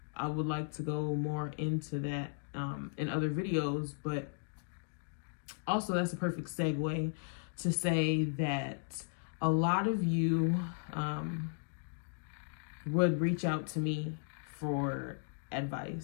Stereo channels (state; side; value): silent; right; digital silence